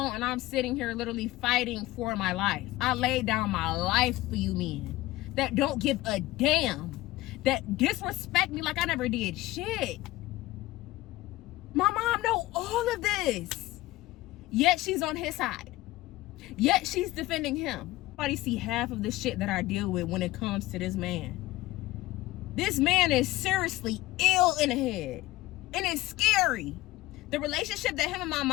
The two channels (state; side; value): quieter; right; 17.8 dB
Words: And I'm sitting here literally fighting for my life. I laid down my life for you men that don't give a damn, that disrespect me like I never did shit. My mom know all of this. Yet she's on his side. Yet she's defending him. Nobody see half of the shit that I deal with when it comes to this man. This man is seriously ill in the head. And it's scary. The relationship that him and my